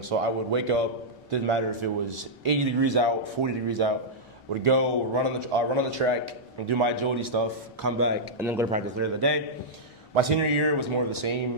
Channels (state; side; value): normal; both; correlation -0.09